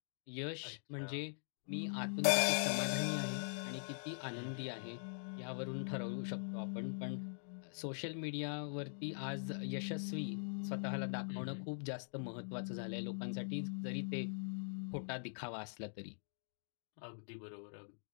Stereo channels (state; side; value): silent; right; digital silence